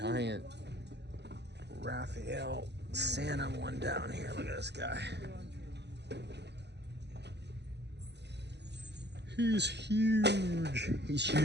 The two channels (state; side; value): late; left; 0.50 ms